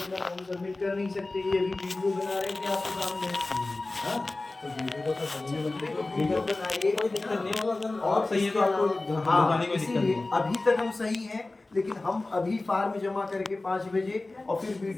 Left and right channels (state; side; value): quieter; right; 3.1 dB